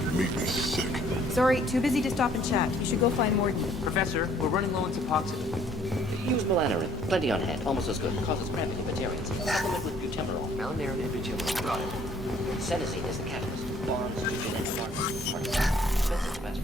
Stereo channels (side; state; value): both; normal; correlation 0.60